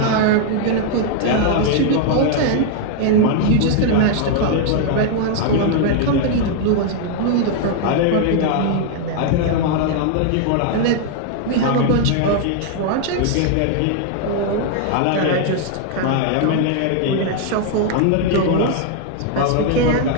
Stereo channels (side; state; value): both; different; correlation 0.00